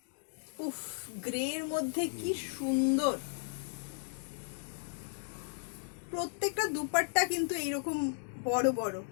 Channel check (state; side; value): silent; right; digital silence